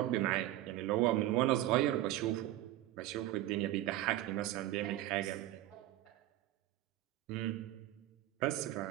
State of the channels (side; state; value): left; quieter; 14.8 dB